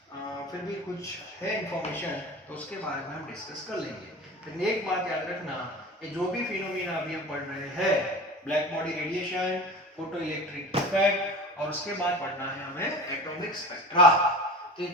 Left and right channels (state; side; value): normal; both; correlation 0.34